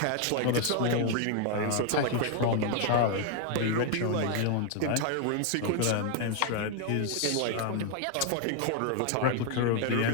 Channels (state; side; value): different; both; correlation 0.00